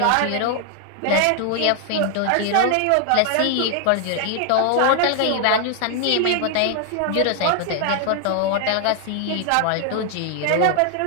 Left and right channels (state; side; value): different; both; correlation 0.00